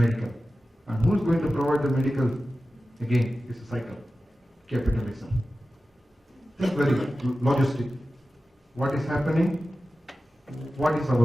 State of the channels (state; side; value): normal; both; correlation 0.94